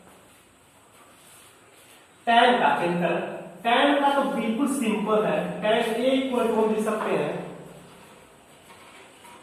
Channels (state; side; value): identical; both; correlation 1.00